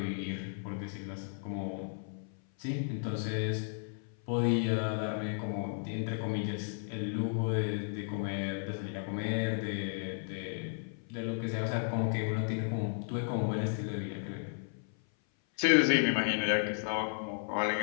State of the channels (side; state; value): right; silent; 55 dB below the other